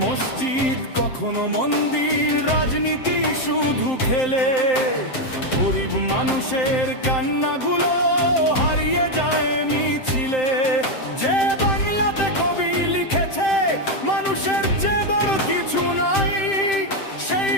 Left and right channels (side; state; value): right; late; 7.7 ms